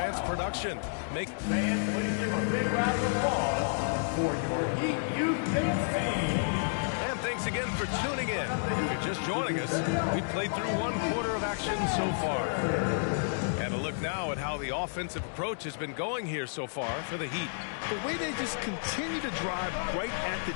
production. Fans, please give a big round of applause for your Heat Youth Dance team. And thanks again for tuning in. If you're just joining us, we played through 1 quarter of action so far. And a look now at how the offensive approach has been going here so far for the Heat. The way they just continue to drive right at the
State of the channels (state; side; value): silent; right; digital silence